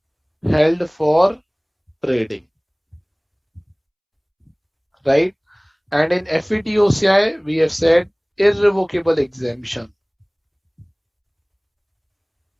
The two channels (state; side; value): identical; both; correlation 1.00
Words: held for trading, right? And in FETOCI, we have said irrevocable exemption.